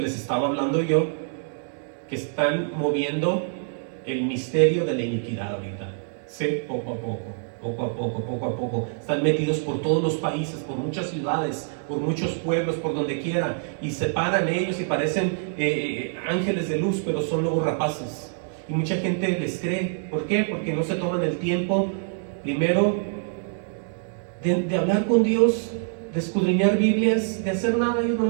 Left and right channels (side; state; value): left; silent; digital silence